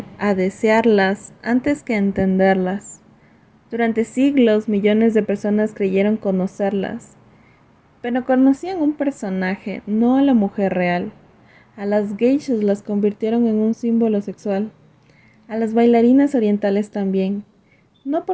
a desearlas antes que a entenderlas. Durante siglos, millones de personas creyeron conocerlas, pero conocían un personaje, no a la mujer real. A las geishas las convirtieron en un símbolo sexual, a las bailarinas orientales también, no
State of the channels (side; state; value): both; identical; correlation 1.00